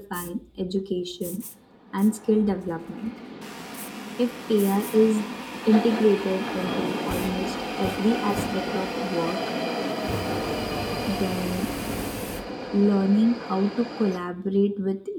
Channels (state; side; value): identical; both; correlation 1.00